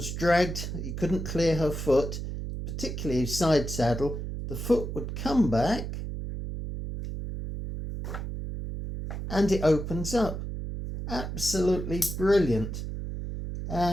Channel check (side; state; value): right; noise; hum, 5 dB below the sound